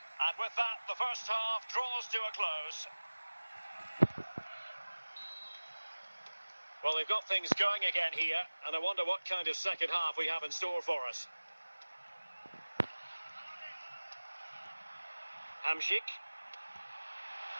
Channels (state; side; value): inverted; both; correlation -1.00